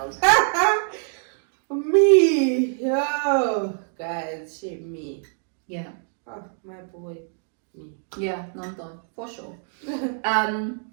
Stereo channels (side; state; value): left; silent; 62 dB below the other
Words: Me. Yo. Guys, shame me. Yeah. Oh, my boy. Me. Yeah, non-thought, for sure.